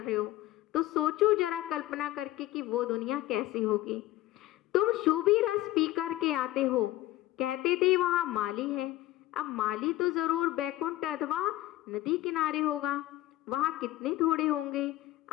रहे हो, तो सोचो जरा कल्पना करके कि वो दुनिया कैसी होगी। तुम शुभी रस पी कर के आते हो, कहते थे वहाँ माली है। अब माली तो जरूर बैकुंठ अथवा नदी किनारे होगा, वहाँ कितने थोड़े होंगे।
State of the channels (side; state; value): right; quieter; 16.1 dB